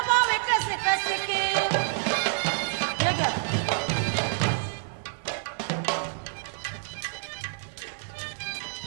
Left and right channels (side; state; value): left; silent; digital silence